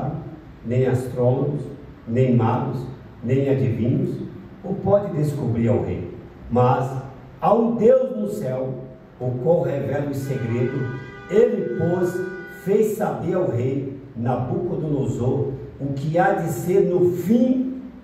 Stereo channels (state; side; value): identical; both; correlation 1.00